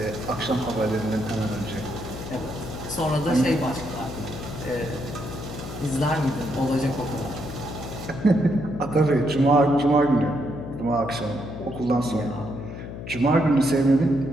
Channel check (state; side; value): noise; left; hum, 9 dB below the sound